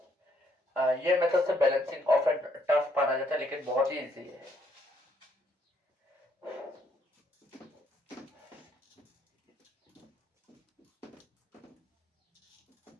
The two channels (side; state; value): both; normal; correlation 0.70